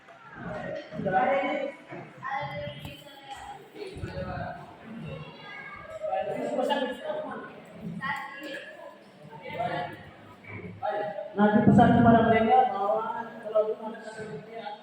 Nanti pesan kepada mereka bahwa kalau ada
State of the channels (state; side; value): identical; both; correlation 1.00